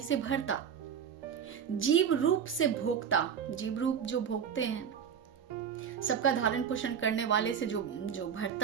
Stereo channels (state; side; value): quieter; left; 7.6 dB